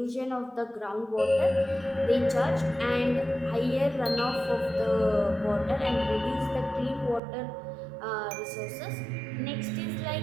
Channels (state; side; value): drops out; left; at 7.2 s